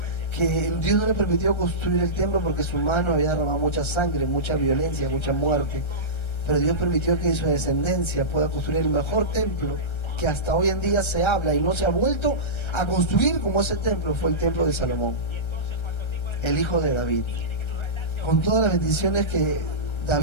que Dios no le permitió construir el templo porque su mano había derramado mucha sangre, mucha violencia, mucha muerte, pero Dios permitió que su descendencia pueda construir el mejor templo que hasta hoy en día se habla y no se ha vuelto a construir como ese templo. Fue el templo de Salomón, el hijo de David, con todas las bendiciones que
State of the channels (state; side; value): late; right; 1.3 ms